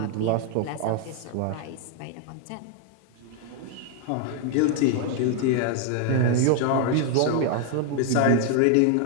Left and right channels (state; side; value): different; both; correlation 0.00